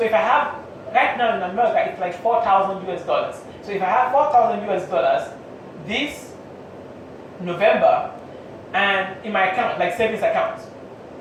I have right now in America, it's like 4,000 US dollars. So if I have 4,000 US dollars this November, and in my account, like savings account,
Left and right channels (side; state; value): both; identical; correlation 1.00